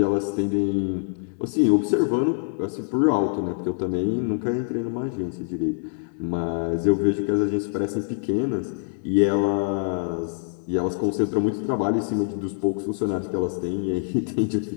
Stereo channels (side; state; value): right; silent; digital silence